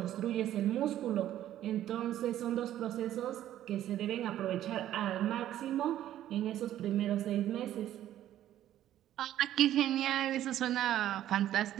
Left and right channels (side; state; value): left; quieter; 12.3 dB